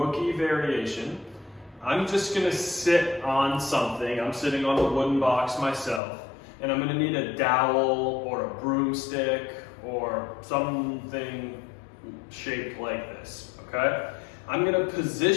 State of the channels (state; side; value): drops out; right; at 6.0 s